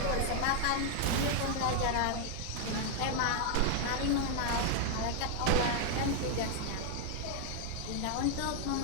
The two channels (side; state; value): both; different; correlation 0.00